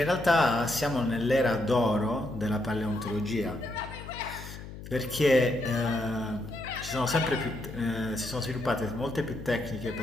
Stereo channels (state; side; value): noise; left; hum, 12 dB below the sound